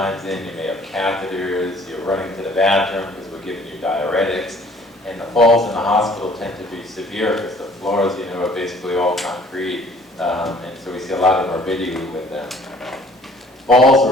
in, you may have catheters, you're running to the bathroom because we're giving you diuretics. And the falls in the hospital tend to be severe because the floors, are basically all concrete. And so we see a lot of morbidity with them. Falls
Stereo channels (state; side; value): normal; both; correlation 0.56